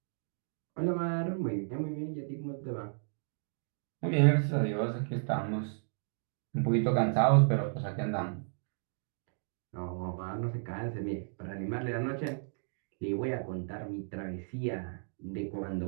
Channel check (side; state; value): left; silent; digital silence